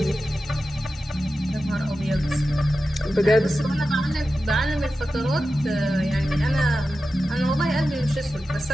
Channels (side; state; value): both; normal; correlation 0.92